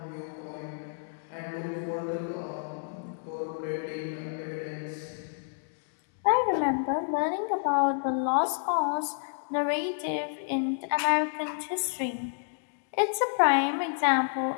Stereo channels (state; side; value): silent; right; digital silence